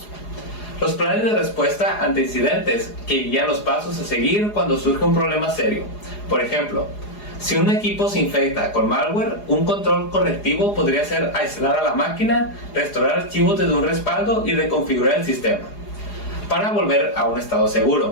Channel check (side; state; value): right; late; 4.8 ms